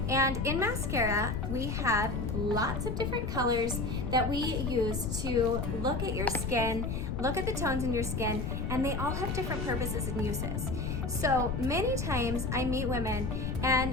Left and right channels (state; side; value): noise; left; rumble, 2 dB below the sound